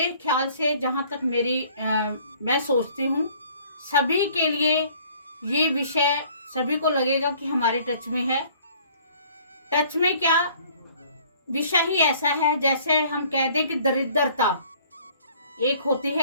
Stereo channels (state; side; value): inverted; both; correlation -0.56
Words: ख्याल से जहाँ तक मैं सोचती हूँ सभी के लिए ये विषय सभी को लगेगा कि हमारे टच में है। टच में क्या, विषय ही ऐसा है जैसे हम कह दें कि दरिद्रता एक होती